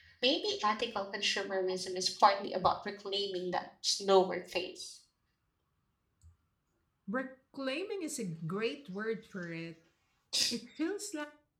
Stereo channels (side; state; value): both; identical; correlation 1.00